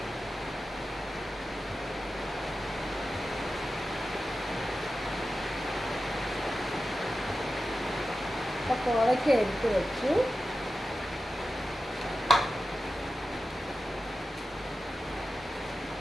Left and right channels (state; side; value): normal; both; correlation 0.92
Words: അപ്പോൾ കോവയ്ക്ക എടുത്ത് വെച്ചു.